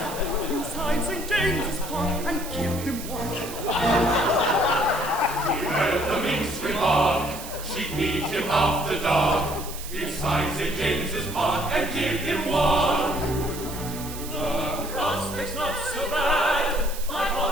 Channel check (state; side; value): noise; right; hiss, 12 dB below the sound